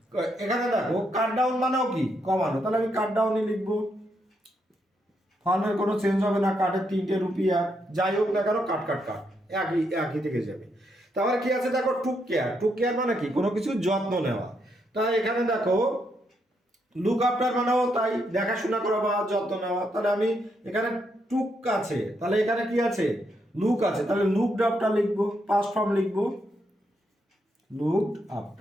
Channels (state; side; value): normal; both; correlation 0.78